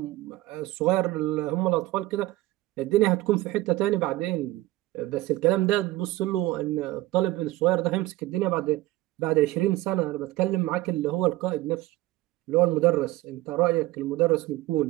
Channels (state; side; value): quieter; left; 17.7 dB